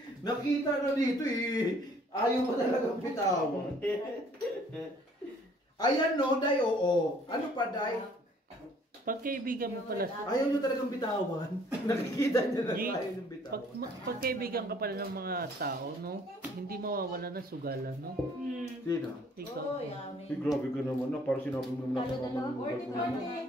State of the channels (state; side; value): normal; both; correlation 0.59